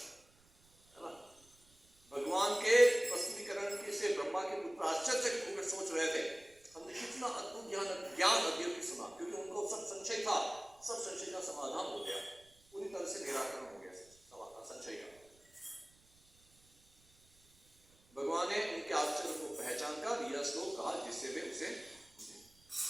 है ना। भगवान के प्रस्तुतिकरण के से ब्रह्मा के पुत्र आश्चर्य होकर सोच रहे थे, हमने कितना अद्भुत ज्ञान अध्ययन सुना, क्योंकि उनको सब संशय था, सब संशय का समाधान हो गया, पूरी तरह से निराकरण हो गया संशय का। भगवान ने उनके आश्चर्य को पहचान कर यह श्लोक कहा, जिससे वे उसे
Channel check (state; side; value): noise; right; rumble, 29 dB below the sound